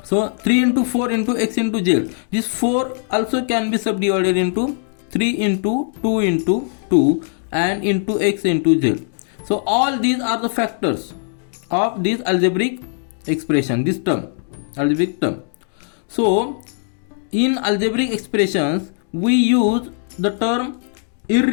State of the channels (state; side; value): silent; right; 65 dB below the other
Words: So 3 into 4 into x into z. This 4 also can be subdivided into 3 into 2 into 2 and into x into z. So all these are the factors of this algebraic expression, this term, algebraic term. So in algebraic expressions we use the term